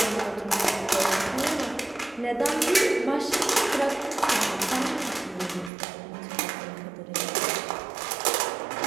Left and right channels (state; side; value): drops out; left; at 5.7 s